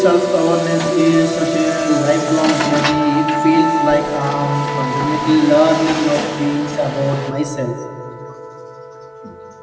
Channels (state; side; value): identical; both; correlation 1.00